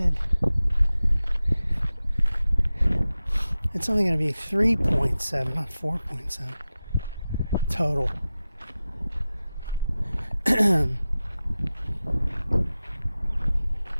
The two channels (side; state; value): both; inverted; correlation -0.94